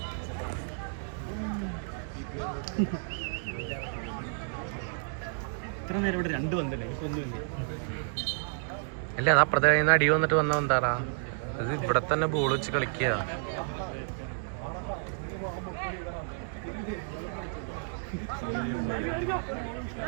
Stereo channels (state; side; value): silent; left; digital silence